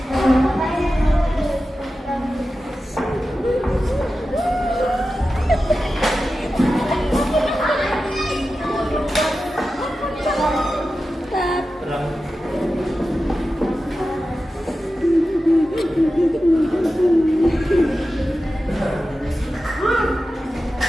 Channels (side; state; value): both; normal; correlation 0.93